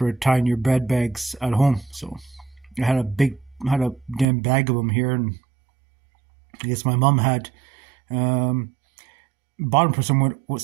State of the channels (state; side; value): drops out; left; at 4.2 s